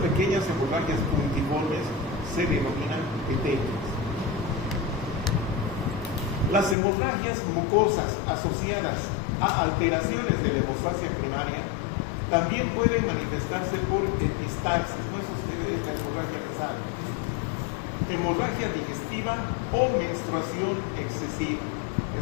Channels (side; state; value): right; drops out; at 6.8 s